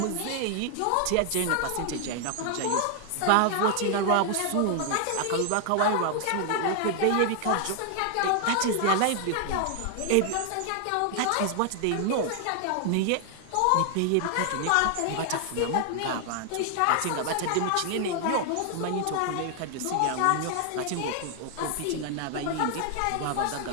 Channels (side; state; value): both; different; correlation 0.00